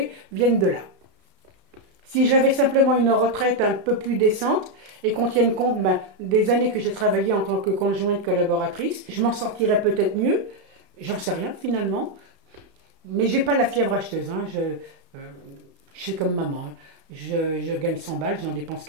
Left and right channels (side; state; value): left; late; 33 ms